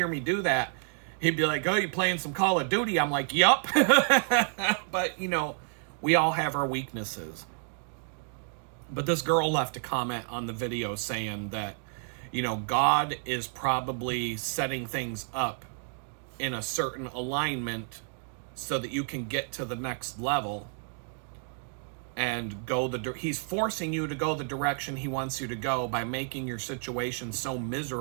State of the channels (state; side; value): silent; left; 58 dB below the other